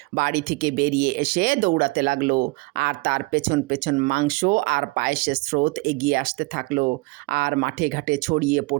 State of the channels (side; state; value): left; quieter; 24.9 dB